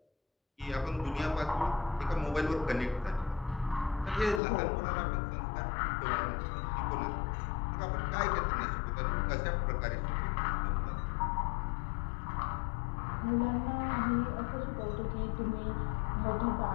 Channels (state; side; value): drops out; right; at 4.4 s